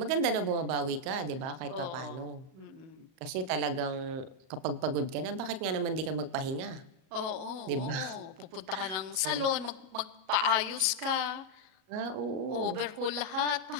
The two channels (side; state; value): left; late; 37 ms